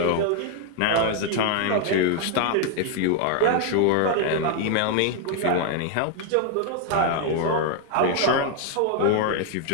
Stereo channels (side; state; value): both; different; correlation 0.00